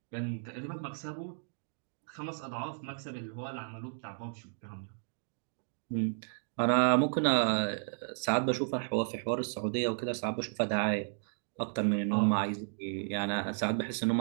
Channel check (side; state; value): left; silent; digital silence